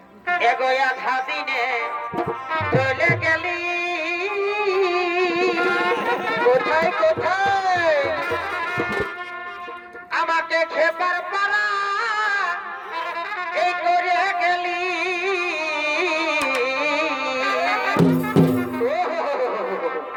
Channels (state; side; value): identical; both; correlation 1.00